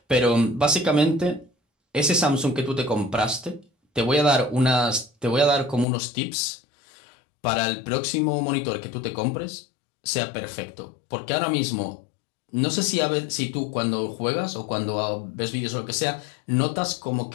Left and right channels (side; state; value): right; drops out; at 5.9 s